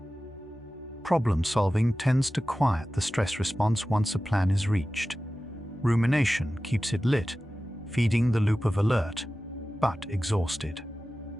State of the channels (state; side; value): normal; both; correlation 0.95